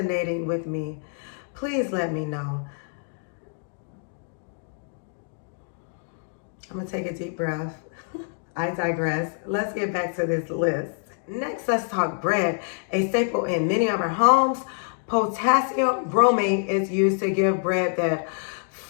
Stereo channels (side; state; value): right; silent; 58 dB below the other